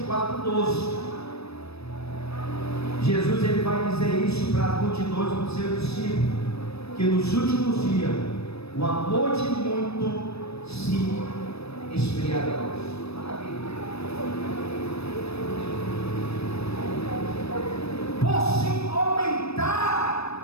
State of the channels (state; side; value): late; right; 0.78 ms